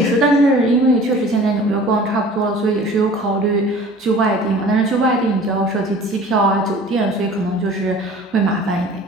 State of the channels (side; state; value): both; normal; correlation 0.45